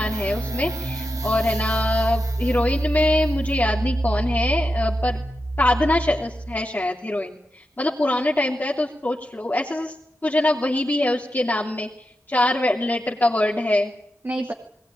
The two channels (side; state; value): both; normal; correlation 0.88